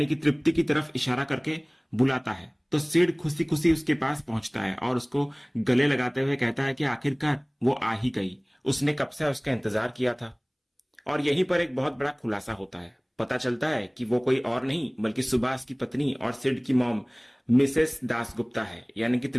कि तृप्ति की तरफ इशारा करके बुलाता है, तो सिड खुशी खुशी उसके पास पहुंचता है और उसको गले लगाते हुए कहता है कि आखिरकार वो आ ही गई, उसने कब से उसका इंतजार किया था। और यहीं पर एक बहुत बड़ा खुलासा होता है। पता चलता है कि वो कोई और नहीं बल्कि सुभाष की पत्नी और सिड की मॉम मिसेस दासगुप्ता है, यानी कि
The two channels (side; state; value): both; identical; correlation 1.00